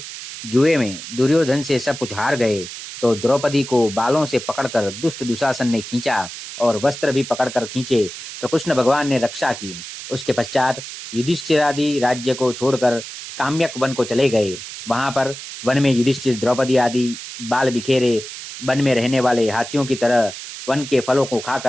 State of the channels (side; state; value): right; noise; hiss, 11 dB below the sound